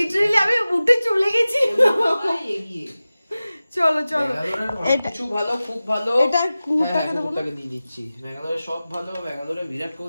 আমি উঠে চলে গেছি। এগিয়ে চলো কিছু ভালো, খুব ভালো। এটা কুকুরটাকে দেবো না? দিয়ে দিচ্ছি। ব্যাঙ্গালোরে সব ভালো, ব্যাঙ্গালোরে বিরাট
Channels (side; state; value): both; inverted; correlation -0.96